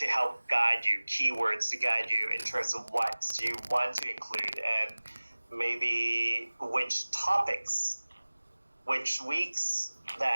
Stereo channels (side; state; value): both; inverted; correlation -1.00